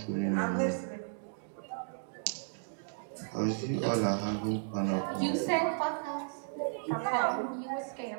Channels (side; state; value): left; silent; digital silence